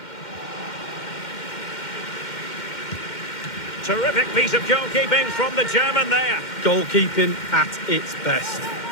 Terrific piece of goalkeeping from the German there. Goalkeeping at its best.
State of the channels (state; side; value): late; right; 2.1 ms